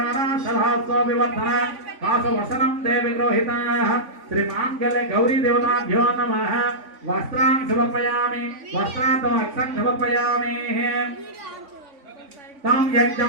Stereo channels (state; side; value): late; left; 3.5 ms